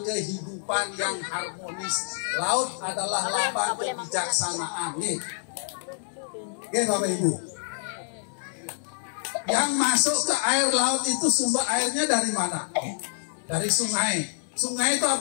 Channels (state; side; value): silent; right; 60 dB below the other